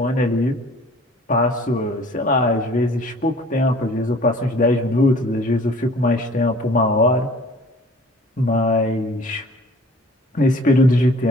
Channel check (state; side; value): normal; both; correlation 0.50